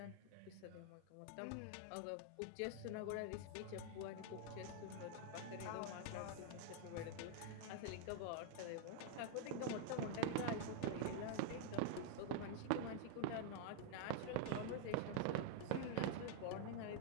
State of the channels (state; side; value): different; both; correlation 0.00